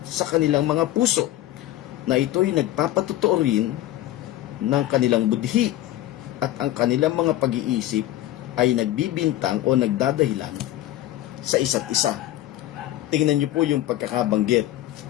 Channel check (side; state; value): right; quieter; 14.2 dB